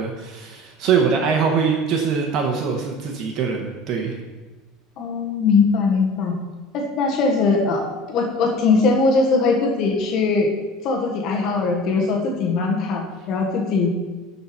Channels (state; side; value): normal; both; correlation 0.41